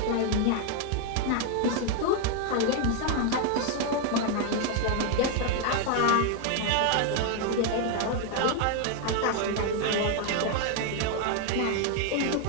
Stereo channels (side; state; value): both; different; correlation 0.01